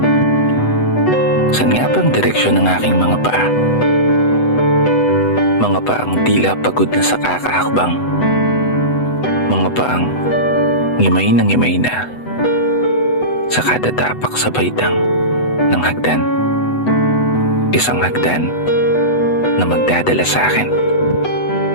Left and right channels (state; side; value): late; right; 8.0 ms